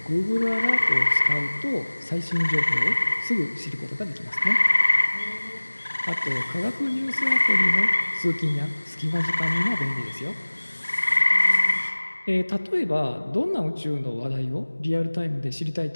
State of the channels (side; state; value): both; inverted; correlation -1.00